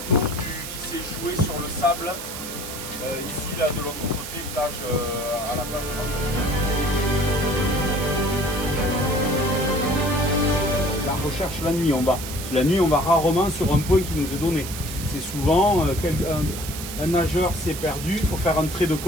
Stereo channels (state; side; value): noise; right; hiss, 9 dB below the sound